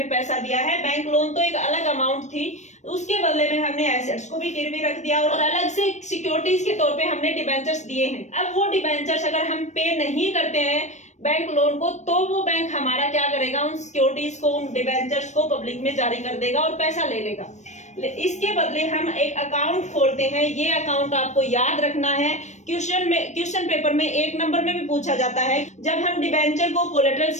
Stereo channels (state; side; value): late; right; 0.34 ms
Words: पैसा दिया है। बैंक लोन तो एक अलग अमाउंट थी, उसके बदले में हमने एसेट्स को भी गिरवी रख दिया और अलग से सिक्योरिटीज के तौर पे हमने डिबेंचर्स दिए हैं। अब वो डिबेंचर्स अगर हम पे नहीं करते हैं बैंक लोन को, तो वो बैंक हमारा क्या करेगा, उन सिक्योरिटीज को, उन डिबेंचर्स को पब्लिक में जारी कर देगा और पैसा ले लेगा। इसके बदले हम एक अकाउंट खोलते हैं। ये अकाउंट आपको याद रखना है, क्वेश्चन पेपर में 1 नंबर में भी पूछा जाता है। जब हम डिबेंचर को कोलेटरल